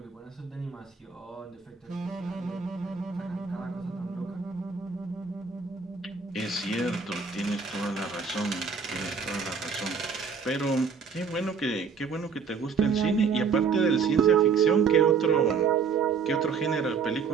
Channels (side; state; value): left; quieter; 5.8 dB